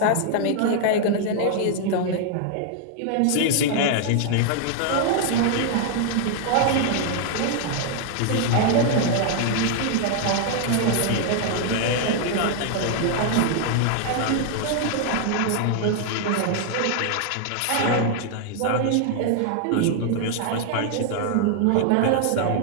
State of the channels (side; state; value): both; different; correlation 0.00